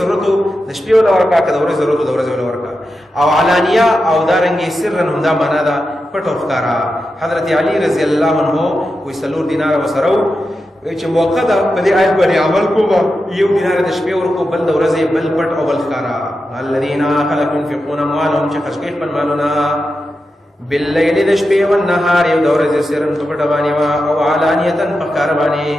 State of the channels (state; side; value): normal; both; correlation 0.90